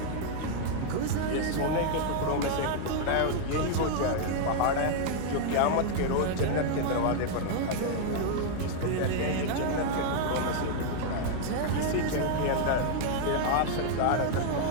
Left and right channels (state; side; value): different; both; correlation 0.00